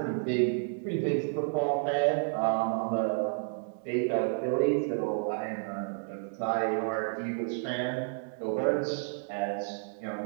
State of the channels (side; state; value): left; silent; digital silence